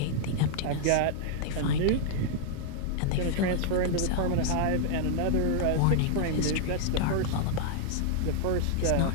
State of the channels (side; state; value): both; different; correlation -0.01